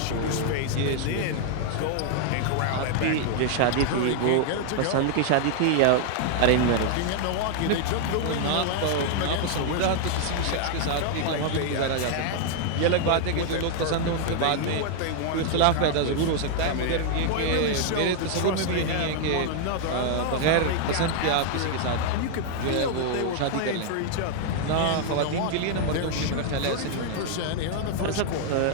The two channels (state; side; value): different; both; correlation 0.00